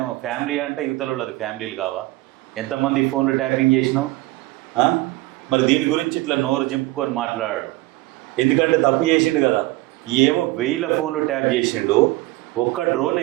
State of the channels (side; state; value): left; quieter; 19.4 dB